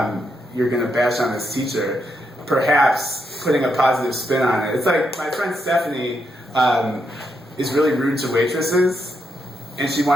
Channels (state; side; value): normal; both; correlation 0.81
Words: you're going to bash on this teacher. Perhaps putting a positive spin on it. It's like my friend Stephanie is really rude to waitresses, and she